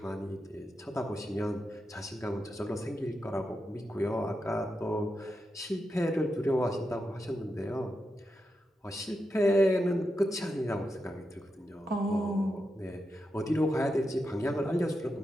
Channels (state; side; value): normal; both; correlation 0.87